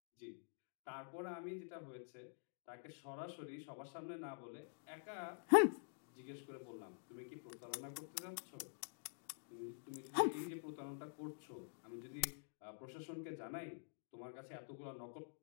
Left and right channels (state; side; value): silent; right; digital silence